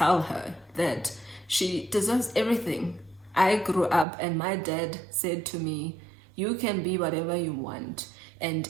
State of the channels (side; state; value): left; drops out; at 4.0 s